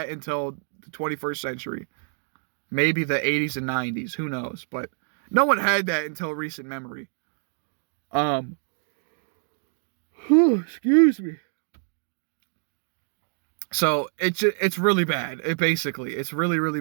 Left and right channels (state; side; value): silent; left; digital silence